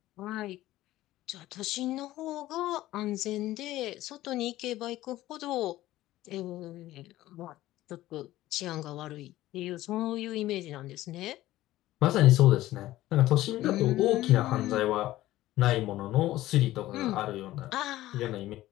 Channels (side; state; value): right; quieter; 15.6 dB